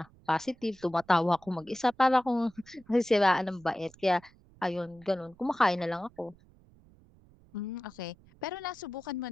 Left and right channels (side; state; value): right; noise; rumble, 27 dB below the sound